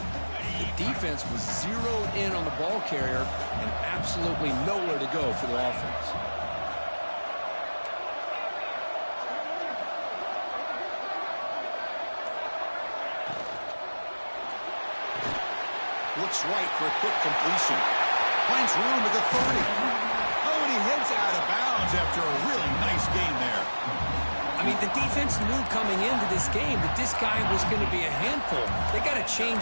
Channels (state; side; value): inverted; both; correlation -1.00